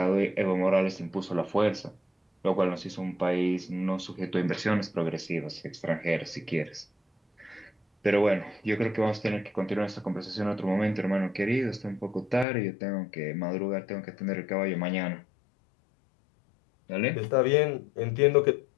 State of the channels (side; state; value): right; drops out; at 12.5 s